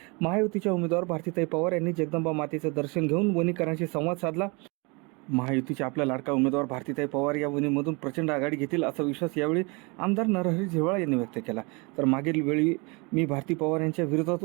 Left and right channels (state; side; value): quieter; left; 29.3 dB